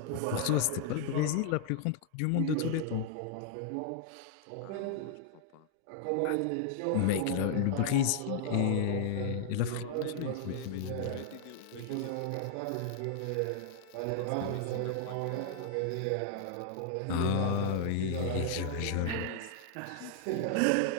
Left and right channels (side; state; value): both; different; correlation 0.00